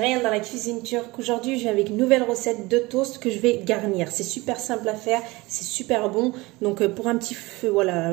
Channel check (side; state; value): left; quieter; 22.2 dB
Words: dans la cuisine turque. Aujourd'hui je viens avec une nouvelle recette de toast que je vais garnir. C'est super simple à faire, c'est super bon. Donc pour un petit voilà,